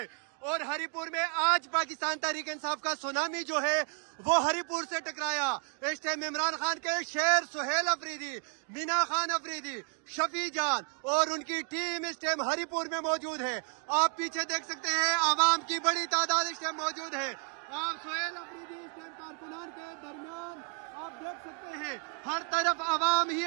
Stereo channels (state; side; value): quieter; left; 37.5 dB